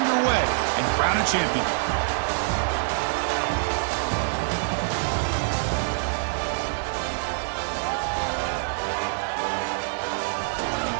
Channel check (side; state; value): left; silent; digital silence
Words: and crown a champion.